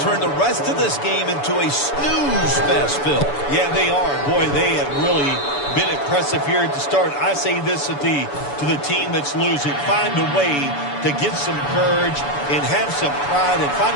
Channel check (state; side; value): late; right; 7.0 ms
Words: the rest of this game into a snooze fest, Phil. Yeah, they are. Boy, they have really been impressive here at the start. I say this to the team that's losing. Find a way to get some courage and have some pride and find